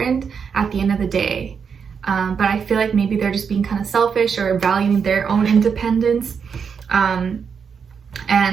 at the end of the day. But I feel like maybe they're just being kind of selfish or valuing their own independence and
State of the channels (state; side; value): quieter; left; 6.4 dB